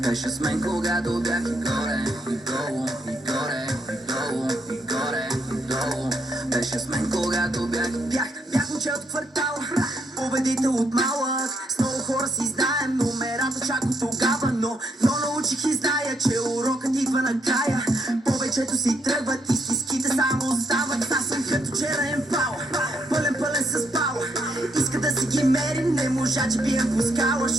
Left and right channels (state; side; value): normal; both; correlation 0.74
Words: с мен, когато бях и горе, и долу, и горе, и долу, и горе, и долу. Беше с мен, когато бях момче от квартала, победител от малък. С много хора си знаем номерата чак от тогава, но научих и зная, че урокът идва накрая. Повечето си тръгват и стиските само остават. Аз съм като черен пал, пълен с пала. Иска да си ги мерим, не можа, че бием по скала.